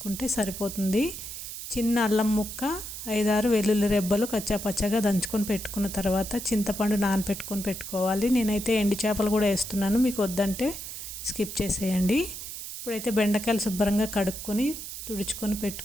సరిపోతుంది. చిన్న అల్లం ముక్క, 5-6 వెల్లుల్లి రెబ్బలు కచ్చాపచ్చగా దంచుకొని పెట్టుకున్న తర్వాత చింతపండు నానపెట్టుకొని పెట్టుకోవాలి. నేనైతే ఎండు చేపలు కూడా వేస్తున్నాను, మీకు వద్దంటే స్కిప్ చేసేయండి. ఇప్పుడైతే బెండకాయలు శుభ్రంగా కడుక్కొని తుడుచుకొని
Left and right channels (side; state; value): right; noise; hiss, 9 dB below the sound